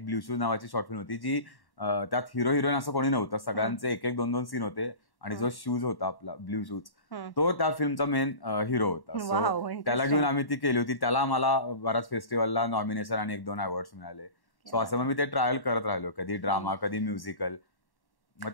ब्ल्यू शूज नावाची शॉर्ट फिल्म होती जी त्यात हिरो हिरोईन असं कोणी नव्हतं, सगळ्यांचे 1-1, 2-2 सीन होते आणि जो शूज होता आपला ब्ल्यू शूज तो त्या फिल्मचा मेन हिरो होता. सो त्याला घेऊन आम्ही ती केली होती. त्याला मला बऱ्याच फेस्टिवलला नॉमिनेशन आणि 1-2 अवॉर्ड्स मिळाले. सो असं मग मी ते ट्रायल करत राहिलो, कधी ड्रामा कधी म्युझिकल.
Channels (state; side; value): late; right; 1.1 ms